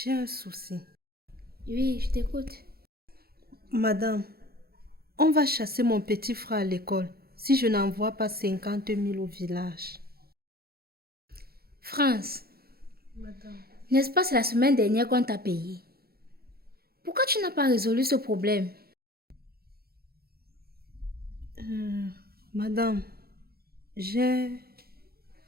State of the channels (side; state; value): left; late; 0.45 ms